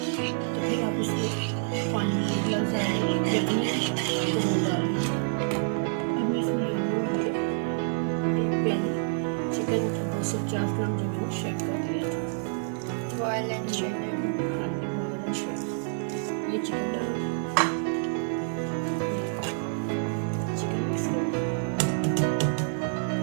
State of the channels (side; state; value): left; silent; digital silence